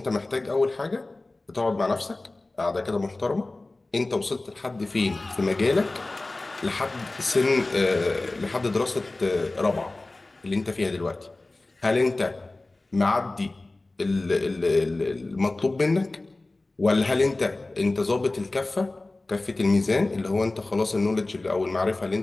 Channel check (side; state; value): right; quieter; 3.0 dB